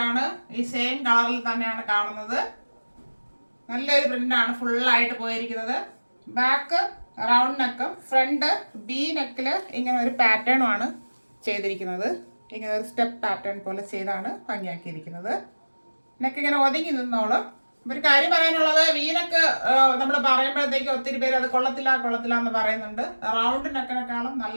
ഈ സെയിം കളറിൽ തന്നെയാണ് കാണുന്നത്. നല്ലൊരു പ്രിന്റ് ആണ് ഫുള്ളായിട്ട് പോയിരിക്കുന്നത്. ബാക്ക് റൗണ്ട് നെക്കും ഫ്രണ്ട് ബി നെക്കില് ഇങ്ങനെ ഒരു പാറ്റേണും ആണ് ചെയ്തിരിക്കുന്നത്. ഇങ്ങനെ ഒരു സ്റ്റെപ്പ് പാറ്റേൺ പോലെ ചെയ്താണ് ഭംഗിയാക്കിയിരിക്കുന്നത്. നെക്ക് ഇങ്ങനെ ഒതുങ്ങി നിന്നോളും. ഒരു കാര്യം പറയാനുള്ളത്, വീനൊക്കെ നമ്മൾ പറയുമ്പോഴത്തേക്ക് ഒത്തിരി പേര് അത് കൊള്ളത്തില്ല എന്ന് പറയുന്നുണ്ട്. റൗണ്ട് നെക്കിനെക്കാളും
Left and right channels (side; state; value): both; inverted; correlation -1.00